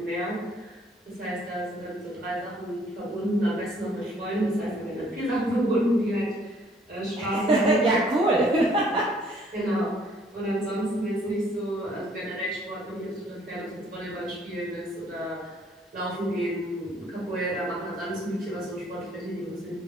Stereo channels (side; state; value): both; normal; correlation 0.62